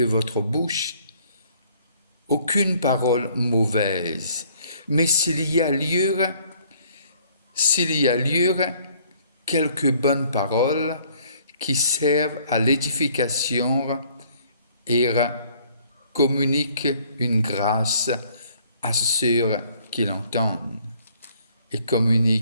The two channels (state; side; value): inverted; both; correlation -0.61